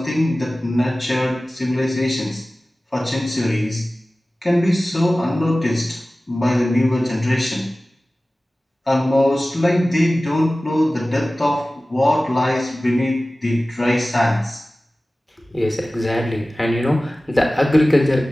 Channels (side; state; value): both; normal; correlation 0.97